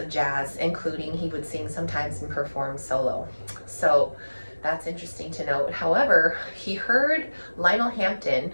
jazz, including he would sing sometimes and perform solo. So that's interesting to note. However, he heard Lionel Hampton,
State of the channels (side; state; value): both; inverted; correlation -1.00